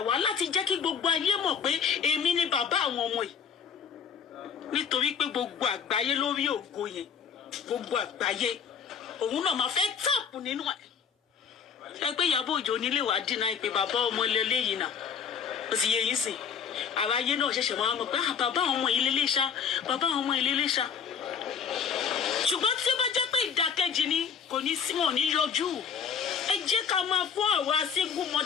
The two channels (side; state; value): right; quieter; 6.8 dB